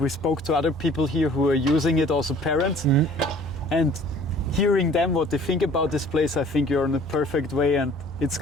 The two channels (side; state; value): both; normal; correlation 0.52